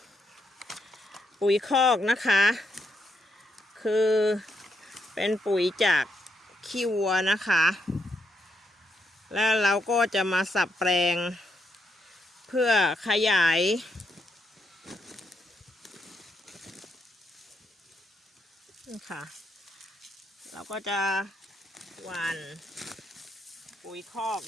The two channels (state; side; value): normal; both; correlation 0.79